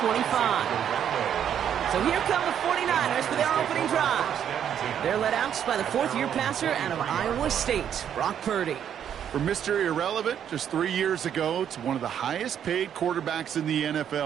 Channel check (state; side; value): quieter; left; 9.2 dB